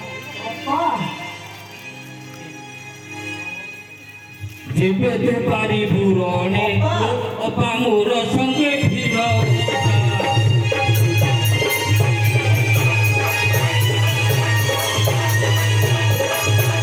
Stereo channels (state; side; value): identical; both; correlation 1.00